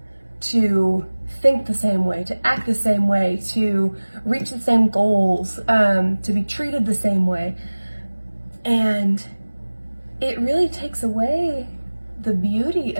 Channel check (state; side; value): inverted; both; correlation -1.00